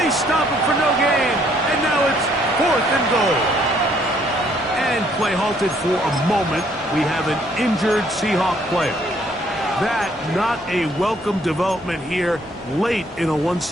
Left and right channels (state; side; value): normal; both; correlation 0.66